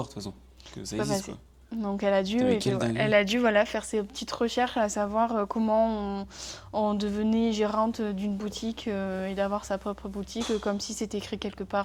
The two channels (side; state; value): both; identical; correlation 1.00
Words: de toute façon. Que ça C'est pas existe, passé. quoi. Donc Putain, mais quelle elle dinguerie. a dû voilà, faire ses petites recherches à savoir comment on devenait gérante d'une boutique et d'avoir sa propre boutique, comme si c'était écrit quelque